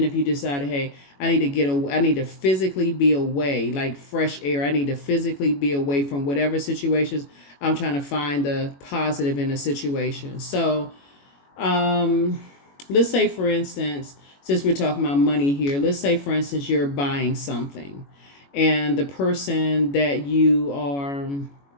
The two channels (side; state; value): right; late; 21 ms